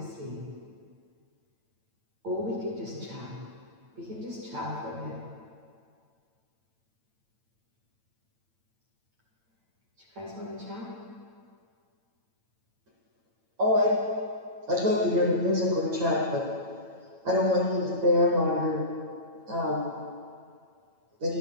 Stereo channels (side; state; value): left; late; 8.9 ms